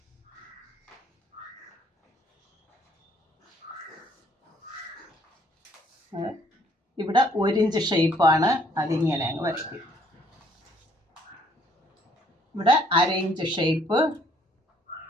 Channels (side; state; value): both; normal; correlation 0.64